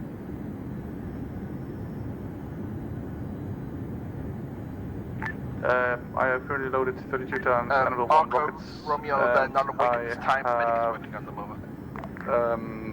I have currently loaded 32 times Anvil 1 rockets. Romeo, they're not awake at this time, medic is working at the moment.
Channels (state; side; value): identical; both; correlation 1.00